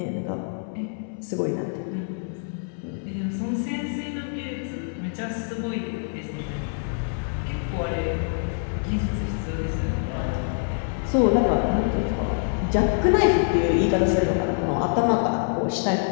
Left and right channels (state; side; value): silent; right; digital silence